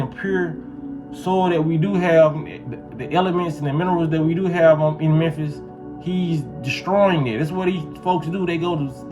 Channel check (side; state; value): both; identical; correlation 1.00